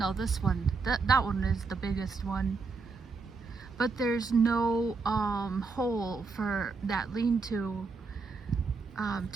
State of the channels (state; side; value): quieter; left; 4.4 dB